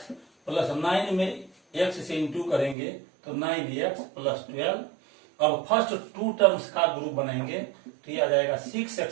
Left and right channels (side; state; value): left; drops out; at 2.8 s